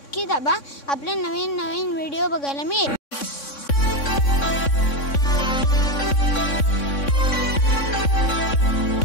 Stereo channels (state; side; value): late; right; 3.6 ms